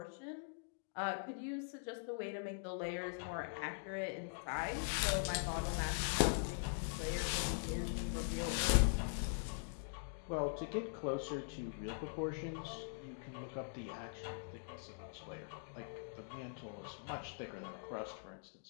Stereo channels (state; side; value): silent; right; digital silence